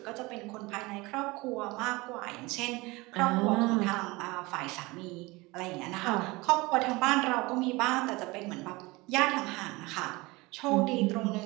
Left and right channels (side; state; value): left; quieter; 22.9 dB